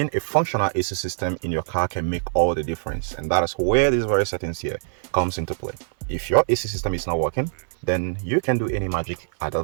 a functional AC system in your car can make all the difference, and that is where these various settings here comes into play. If your AC system is not working, then you can do any magic at that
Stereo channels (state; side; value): silent; left; digital silence